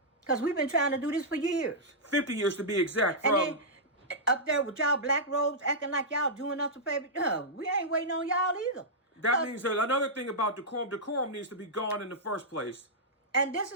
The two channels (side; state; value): both; normal; correlation -0.11